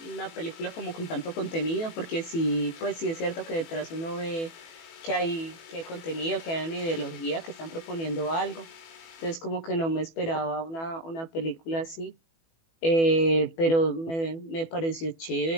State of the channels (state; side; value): late; right; 18 ms